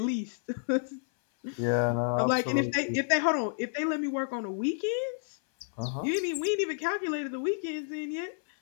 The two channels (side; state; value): right; silent; 58 dB below the other